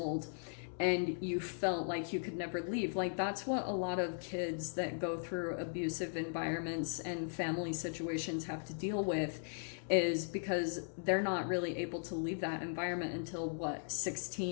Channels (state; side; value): silent; right; digital silence